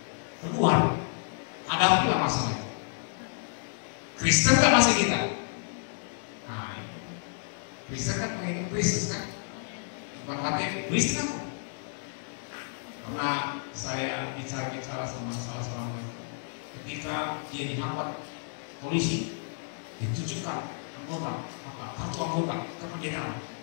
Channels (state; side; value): silent; right; digital silence